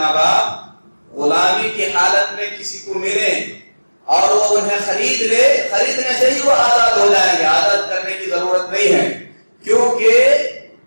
باپ غلامی کی حالت میں کسی کو ملیں اور وہ انہیں خرید لے، خریدنے سے ہی وہ آزاد ہو جائیں گے، آزاد کرنے کی ضرورت نہیں ہے، کیونکہ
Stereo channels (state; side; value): inverted; both; correlation -1.00